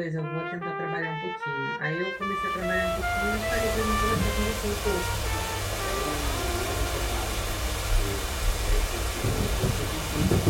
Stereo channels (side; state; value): both; identical; correlation 1.00